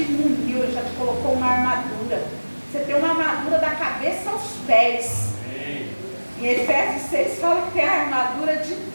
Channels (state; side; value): inverted; both; correlation -1.00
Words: muniu, ele já te colocou uma armadura. Você tem uma armadura da cabeça aos pés. Amém. Em Efésios 6 fala que tem a armadura de